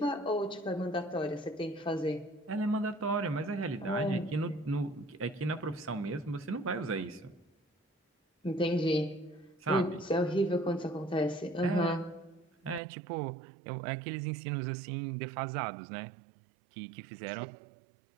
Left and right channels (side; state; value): left; drops out; at 12.8 s